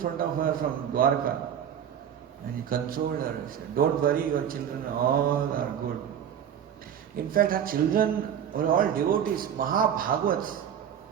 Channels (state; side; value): quieter; left; 9.1 dB